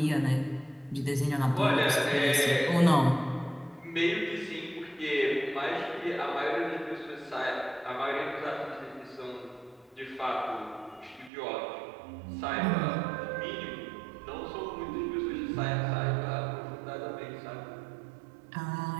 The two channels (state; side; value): drops out; left; at 11.3 s